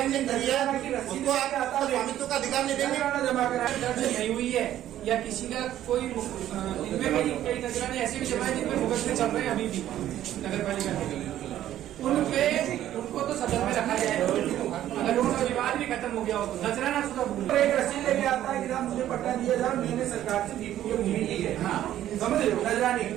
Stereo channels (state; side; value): quieter; left; 12.4 dB